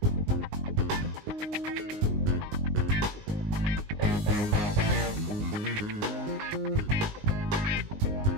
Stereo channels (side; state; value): left; late; 19 ms